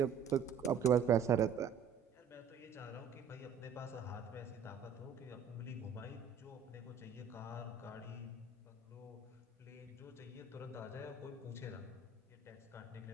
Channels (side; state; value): left; quieter; 6.5 dB